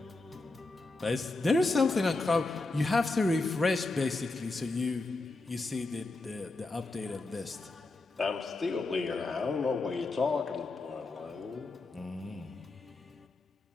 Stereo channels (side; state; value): right; quieter; 3.3 dB